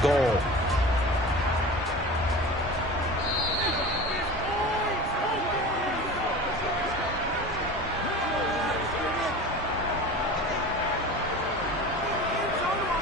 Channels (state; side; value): normal; both; correlation 0.35